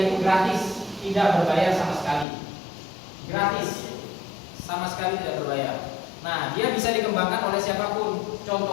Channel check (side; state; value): right; drops out; at 2.2 s